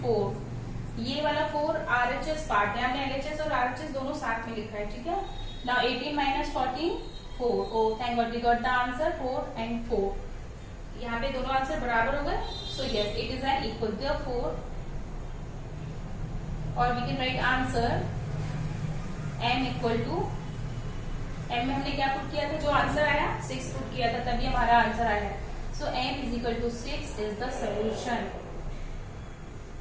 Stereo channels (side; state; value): both; identical; correlation 1.00